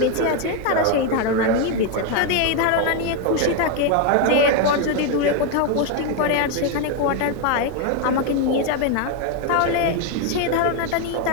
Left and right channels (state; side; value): different; both; correlation 0.01